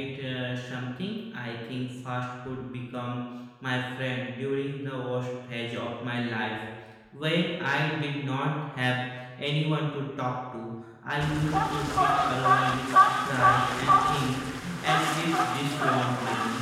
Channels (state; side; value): identical; both; correlation 1.00